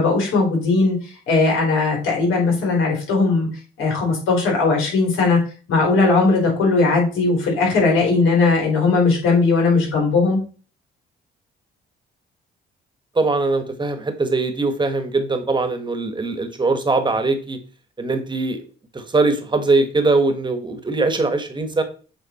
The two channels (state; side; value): normal; both; correlation 0.52